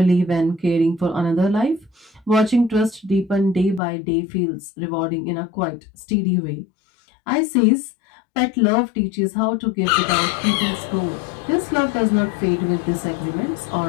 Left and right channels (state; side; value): drops out; right; at 3.8 s